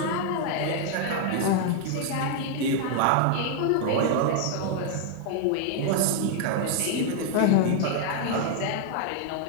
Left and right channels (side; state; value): both; different; correlation 0.00